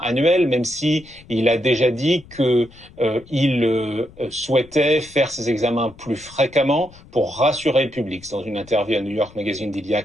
annuel, même si il a déjà dit que il souhaitait faire ces examens plus fréquemment pour rassurer le public. Dans une interview à New York Magazine d'il y a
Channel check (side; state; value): left; noise; rumble, 23 dB below the sound